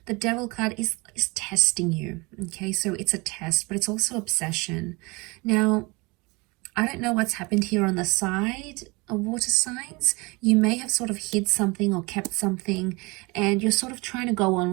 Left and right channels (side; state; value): left; quieter; 26.0 dB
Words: The Devil card is testing you, okay? So it's a test, but it's also obsession. Now, I don't know what's happened here on the side of water signs. You may have sort of hid something or kept something, and you're sort of trying to go on